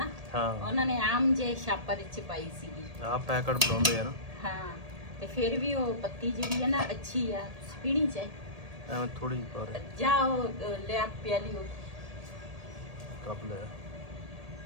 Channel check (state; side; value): late; left; 1.8 ms